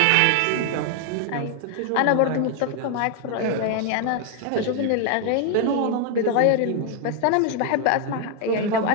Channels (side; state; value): both; different; correlation 0.00